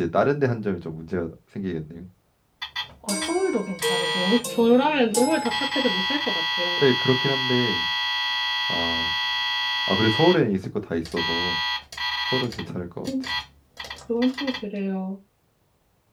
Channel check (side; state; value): both; identical; correlation 1.00